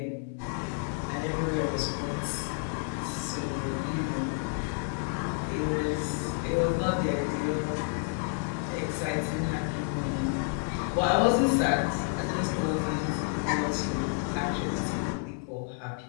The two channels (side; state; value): right; silent; 58 dB below the other